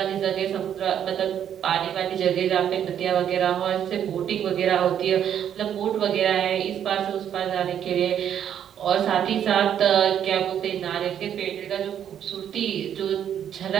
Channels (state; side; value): quieter; left; 9.5 dB